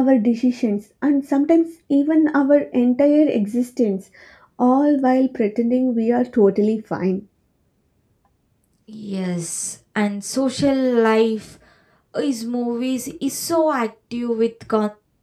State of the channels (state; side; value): identical; both; correlation 1.00